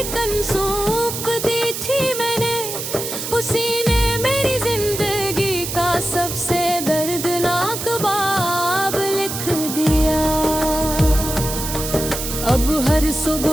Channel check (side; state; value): right; noise; hiss, 5 dB below the sound